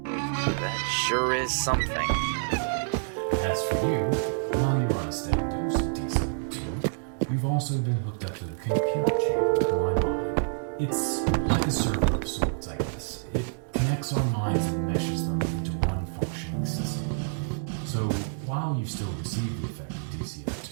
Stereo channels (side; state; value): left; silent; 60 dB below the other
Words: that sure is something. As for you, while you're on a steady dose of DCO2, you've also been hooked up to the computer chamber of my mind. It's like a server of sorts, I guess. It connects our minds and meshes them into one functioning system. So, while you still receive the effect of DCO2,